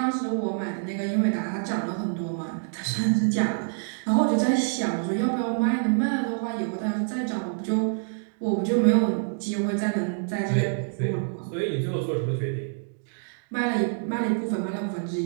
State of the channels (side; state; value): left; silent; digital silence